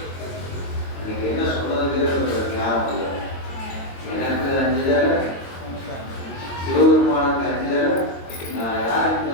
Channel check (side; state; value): right; late; 22 ms